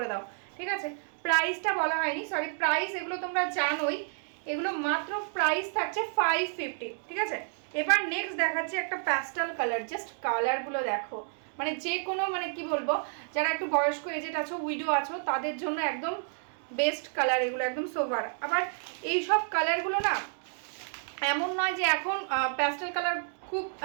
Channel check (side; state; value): left; silent; 58 dB below the other